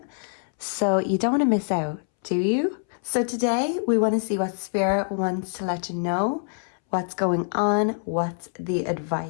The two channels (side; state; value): right; silent; 62 dB below the other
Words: So you don't want to miss out, do you? So today we want to see what Spirit wants to let you know, what's going on, what's the